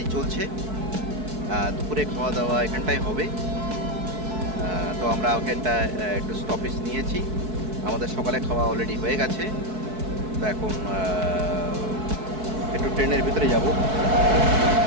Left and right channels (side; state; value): left; late; 4.6 ms